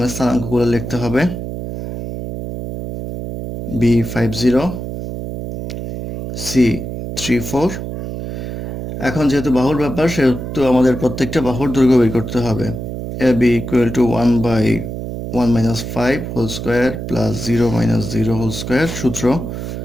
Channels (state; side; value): noise; right; hum, 6 dB below the sound